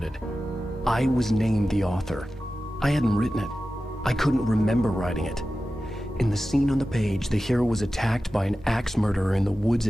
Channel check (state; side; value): normal; both; correlation 0.94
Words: I was named the author. I hadn't written it. I couldn't remember writing it. In the scene on the page, the hero was attacked by an axe murderer in the woods